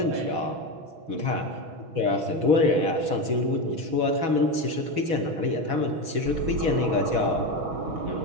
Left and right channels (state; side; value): late; left; 6.2 ms